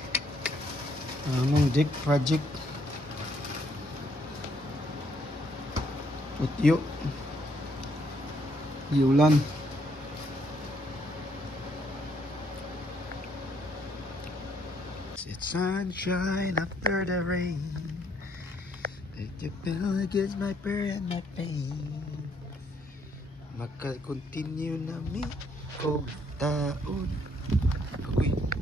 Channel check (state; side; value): normal; both; correlation 0.70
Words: Among deck project. Utyo. Giulan. It's sunshine after the rain. Make you feel against my prayer and my pain. Maka-continue na mi o taon. Agoy.